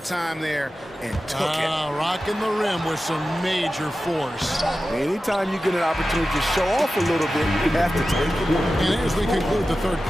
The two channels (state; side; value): normal; both; correlation 0.94